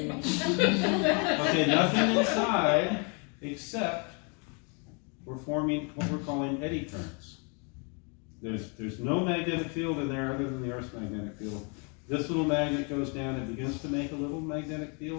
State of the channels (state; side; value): quieter; right; 35.7 dB